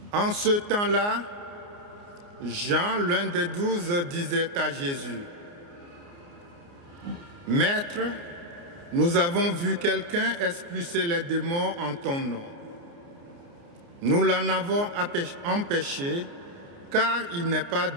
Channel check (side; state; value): left; late; 29 ms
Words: En ce temps-là, Jean, l'un des 12, disait à Jésus, « Maître, nous avons vu quelqu'un expulser les démons en ton nom. Nous l'en avons empêché, car il n'est pas